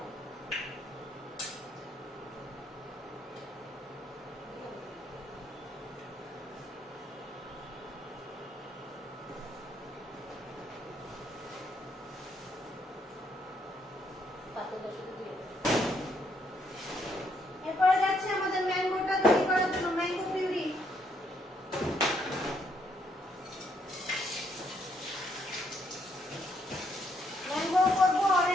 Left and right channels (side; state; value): both; normal; correlation 0.73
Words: এরপরে যাচ্ছে আমাদের ম্যাঙ্গোটা তৈরি করার জন্য, ম্যাঙ্গো পিউরি। ম্যাঙ্গো করবো,